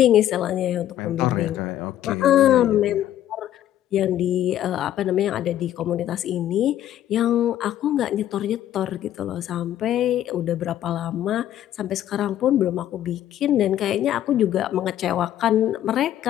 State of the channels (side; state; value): right; quieter; 12.0 dB